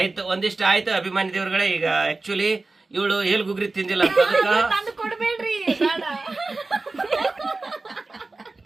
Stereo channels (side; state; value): left; quieter; 3.5 dB